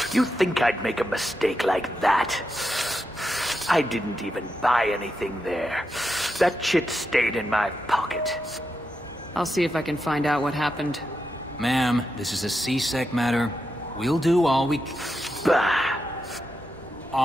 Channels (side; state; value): both; normal; correlation 0.86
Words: You think I'd make a mistake like that? I didn't even buy anything there. That chit stayed in my pocket. I'll see if I can find out what happened. Ma'am, this is a C-Sec matter. We'll do all we